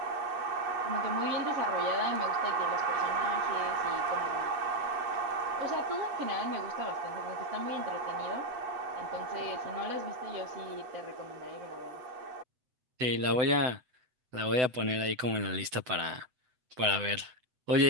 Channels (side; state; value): left; late; 7.9 ms